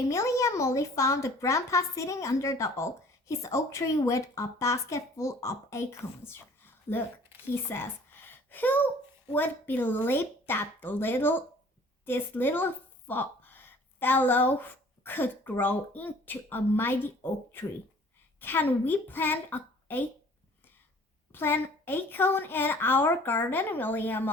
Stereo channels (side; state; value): both; normal; correlation 0.52